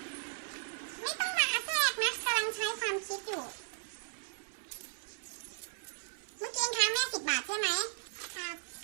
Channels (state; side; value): silent; left; 54 dB below the other